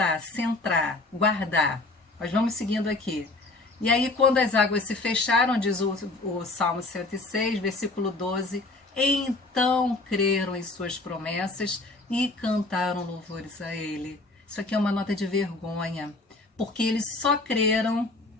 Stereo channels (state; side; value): quieter; right; 3.1 dB